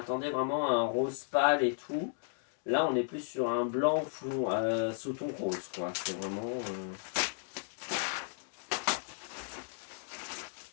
vraiment à un rose pâle et tout. Là, on est plus sur un blanc fond, sous ton rose, quoi. C'est vraiment...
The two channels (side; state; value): right; silent; digital silence